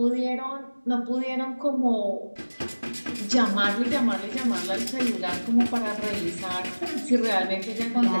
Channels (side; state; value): both; inverted; correlation -1.00